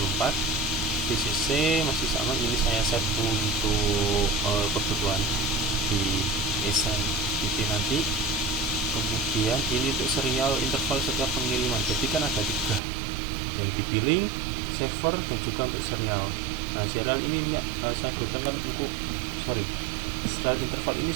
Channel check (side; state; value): left; drops out; at 12.8 s